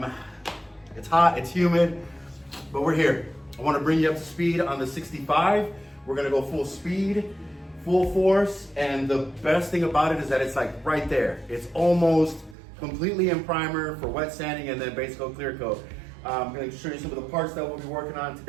It's hot, it's humid, but we're here. I want to bring you up to speed on the 65. We're going to go full speed, full force, and the best thing about it is that it's like right there. It's almost completely in primer for wet sanding and then base coat, clear coat. I'm going to show you some of the parts that we'll be working on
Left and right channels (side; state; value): left; drops out; at 12.6 s